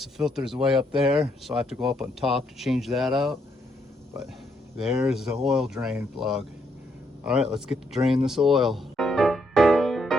the filter's way up there, so I have to go up on top to change that out. But there's the oil drain plug. All right, let's get to drain this oil.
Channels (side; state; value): both; normal; correlation 0.75